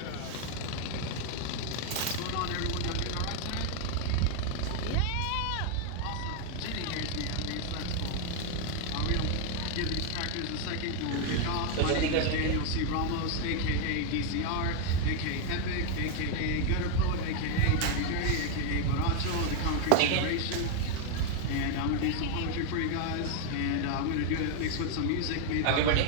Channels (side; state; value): both; different; correlation 0.00